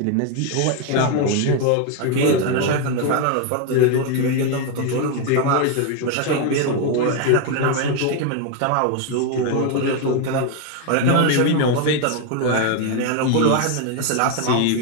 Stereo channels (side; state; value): both; different; correlation 0.01